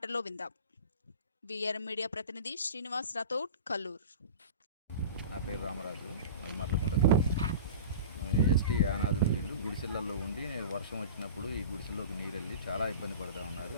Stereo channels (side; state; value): both; inverted; correlation -0.35